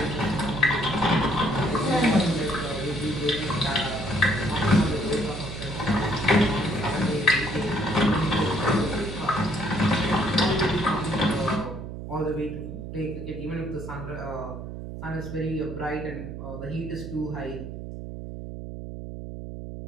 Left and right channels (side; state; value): right; noise; hum, 9 dB below the sound